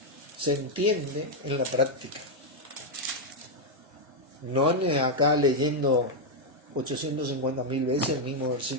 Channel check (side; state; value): both; normal; correlation -0.01